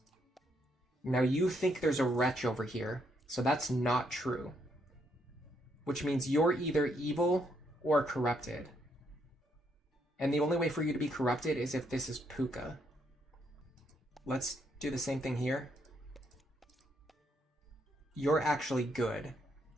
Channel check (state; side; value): normal; both; correlation 0.74